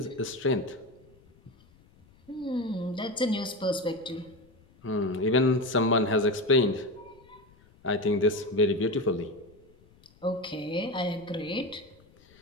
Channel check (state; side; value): noise; left; rumble, 28 dB below the sound